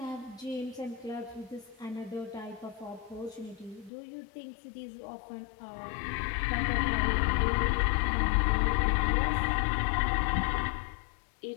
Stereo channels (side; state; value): right; drops out; at 3.9 s